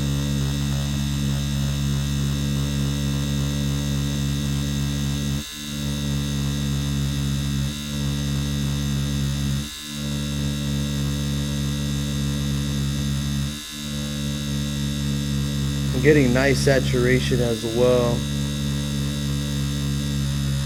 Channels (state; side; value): identical; both; correlation 1.00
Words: I'm getting nice saturation as well.